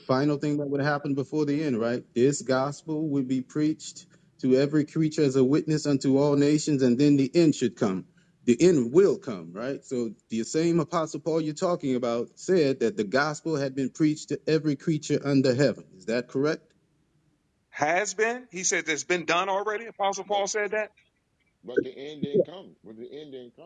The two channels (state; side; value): identical; both; correlation 1.00